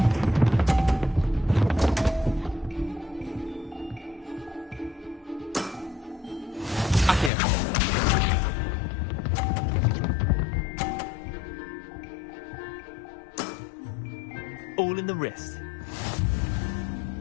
All in the wrist.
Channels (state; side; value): drops out; right; at 7.3 s